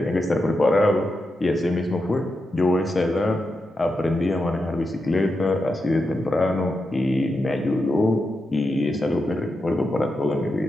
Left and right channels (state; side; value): normal; both; correlation 0.87